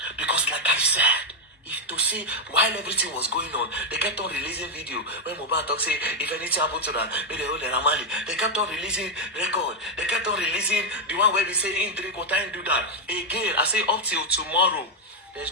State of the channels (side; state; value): both; normal; correlation 0.02